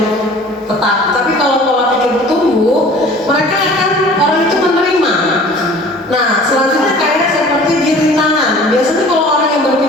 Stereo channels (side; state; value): both; normal; correlation 0.46